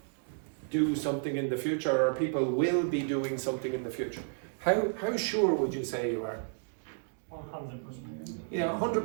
do something in the future, or people will be doing something in the future? How sure would you say you are? 100%. Yeah,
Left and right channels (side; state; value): left; silent; digital silence